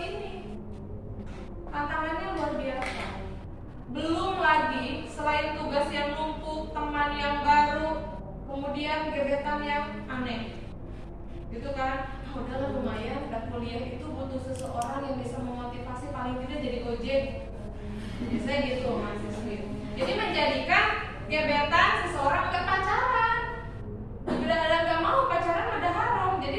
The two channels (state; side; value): identical; both; correlation 1.00